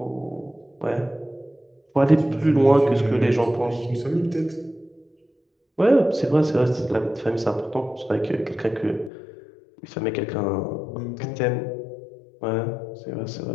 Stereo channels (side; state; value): right; drops out; at 9.1 s